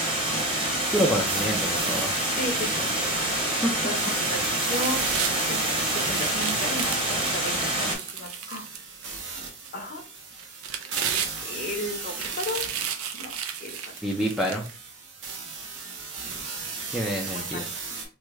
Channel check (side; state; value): both; normal; correlation 0.17